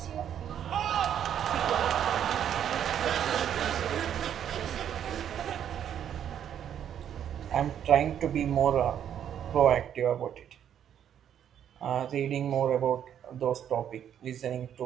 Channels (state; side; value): quieter; left; 9.5 dB